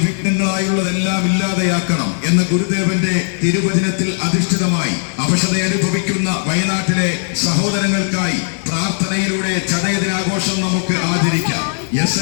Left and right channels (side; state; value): right; silent; 66 dB below the other